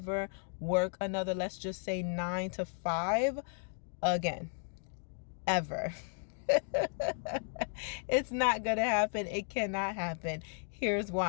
work another, let's just say 9 to 5 again, ever. It's not gonna happen. It cannot happen. Here's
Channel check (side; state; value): right; silent; 55 dB below the other